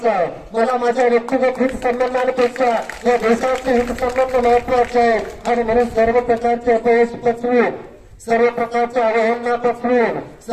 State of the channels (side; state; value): both; identical; correlation 1.00